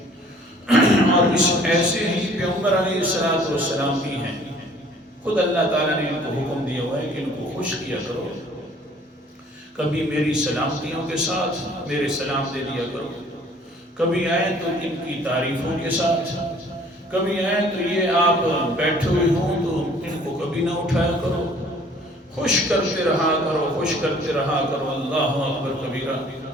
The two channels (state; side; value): normal; both; correlation 0.55